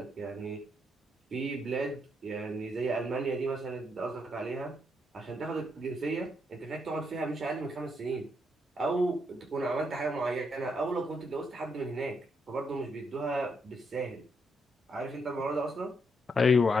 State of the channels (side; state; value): both; normal; correlation 0.77